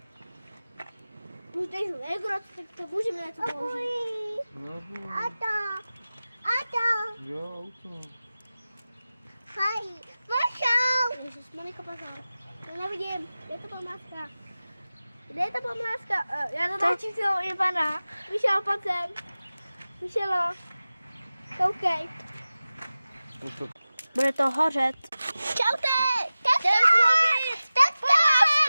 Už tady jsou Egrot, tak můžeme něco použít. Ato! Jo, auto. Hej, pošel! Ježiš, Monika, pozor. To nevidím. Kde je ta památka? Kde je ta památka? Já to točím celou Ivana. Vyšel, pojď sem. Vyšelo. Koukej. Bude to hořet. Čaute! Čau!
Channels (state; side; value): inverted; both; correlation -0.96